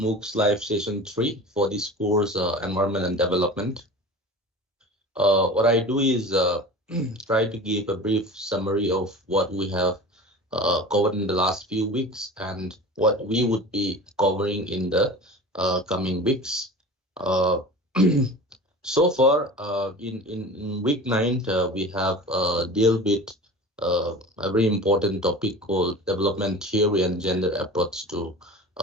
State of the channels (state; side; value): normal; both; correlation 0.36